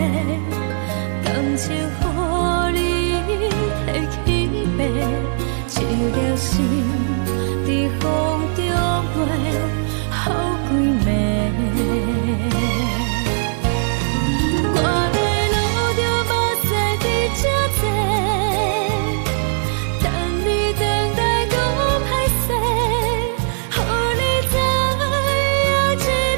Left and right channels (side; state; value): left; silent; 66 dB below the other